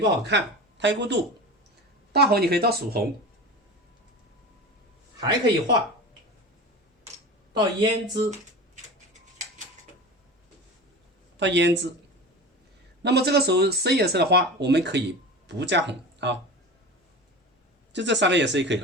好看，太过度。大红你可以到曙红，还可以画到胭脂，那么这个时候深颜色的花我们可以不加红啊，就这3个颜色就可以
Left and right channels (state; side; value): normal; both; correlation 0.31